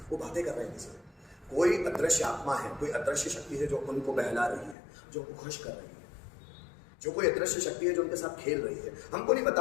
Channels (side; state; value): right; drops out; at 4.8 s